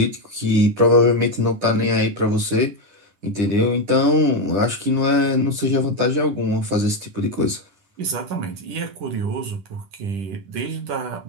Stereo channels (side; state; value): left; late; 10 ms